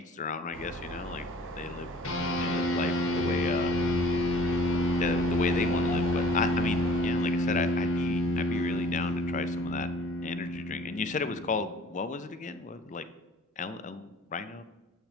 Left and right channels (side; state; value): both; normal; correlation 0.50